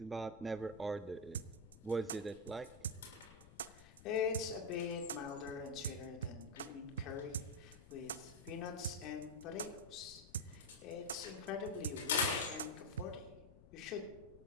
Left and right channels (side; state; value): left; noise; rumble, 19 dB below the sound